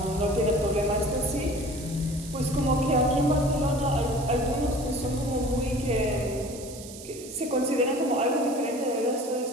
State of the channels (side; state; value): right; noise; hiss, 15 dB below the sound